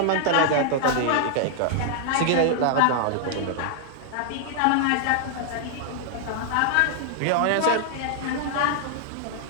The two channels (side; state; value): both; different; correlation 0.00